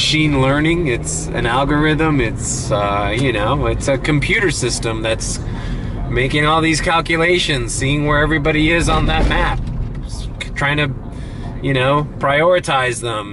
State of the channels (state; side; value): identical; both; correlation 1.00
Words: learning, it's an algorithm, it's you know, it's a computer system that's making all these calculations, seeing where everybody is on that map, trying to, you know, prioritize